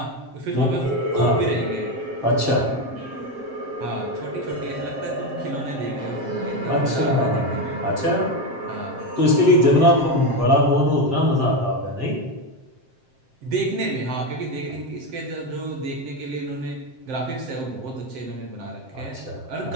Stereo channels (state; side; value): late; left; 7.6 ms